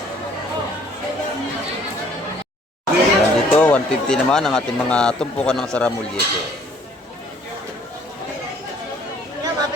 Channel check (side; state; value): both; normal; correlation 0.59